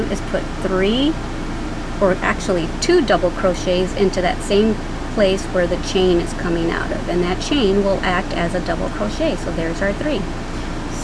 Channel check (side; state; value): both; identical; correlation 1.00